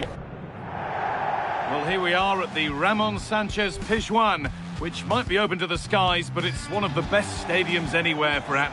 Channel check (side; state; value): both; identical; correlation 1.00